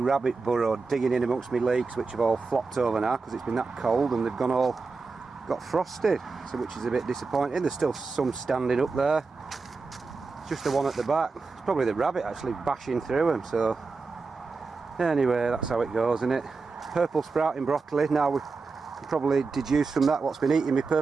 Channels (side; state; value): left; quieter; 4.3 dB